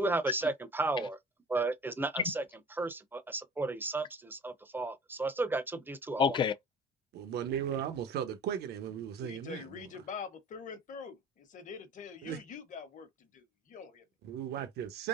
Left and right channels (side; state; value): both; normal; correlation 0.43